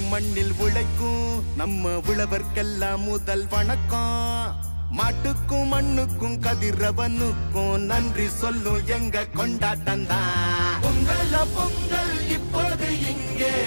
மண்ணில் உழைக்கும் நம்ம உழவர்க்கெல்லாம் முதல் வணக்கம். மாட்டுக்கும் மண்ணுக்கும் கதிரவனுக்கும் நன்றி சொல்லும் எங்க கொண்டாட்டம் தான். பொங்கல பொங்கல் இப்போது இங்கே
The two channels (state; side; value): inverted; both; correlation -1.00